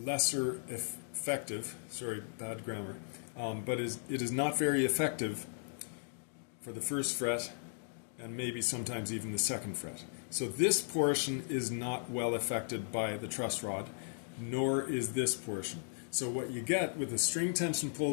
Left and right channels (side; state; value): right; silent; digital silence